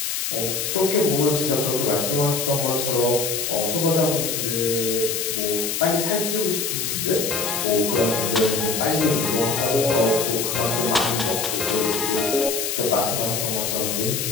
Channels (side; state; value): left; noise; hiss, 2 dB below the sound